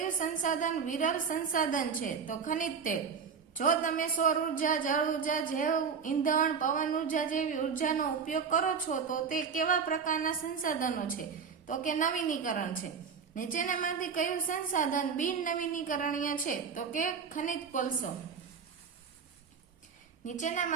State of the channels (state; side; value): quieter; left; 6.2 dB